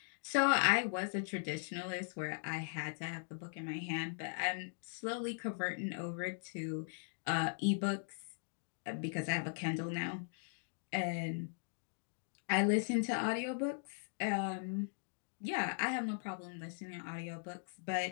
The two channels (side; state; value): right; silent; digital silence